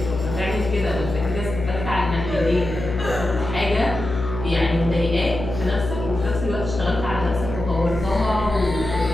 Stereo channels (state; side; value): noise; left; hum, 7 dB below the sound